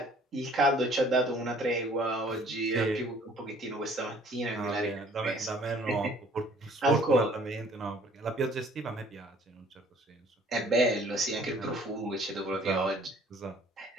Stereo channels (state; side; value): normal; both; correlation 0.56